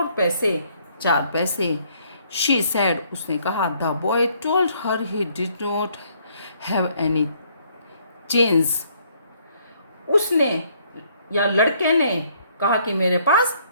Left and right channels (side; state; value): both; inverted; correlation -0.66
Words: पैसे, 4 पैसे। शी सैड, उसने कहा। The boy told her he did not have any change, उसने या लड़के ने कहा कि मेरे पास